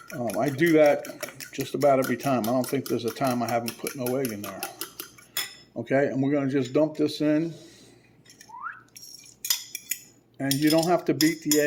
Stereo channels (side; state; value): both; identical; correlation 1.00